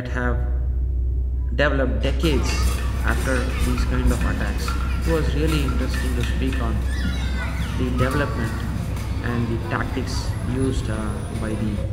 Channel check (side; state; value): both; identical; correlation 1.00